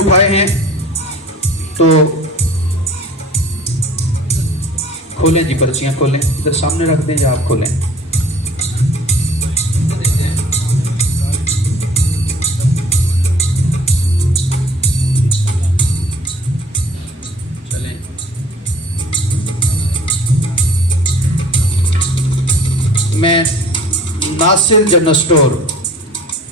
हैं, तो खोलें जी, पर्चियाँ खोलें, इधर सामने रख दें या आप खोलें। मैं नासिर जनरल स्टोर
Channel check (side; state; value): both; normal; correlation 0.51